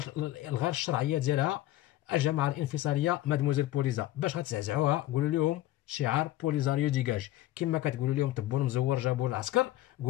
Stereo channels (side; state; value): right; quieter; 15.3 dB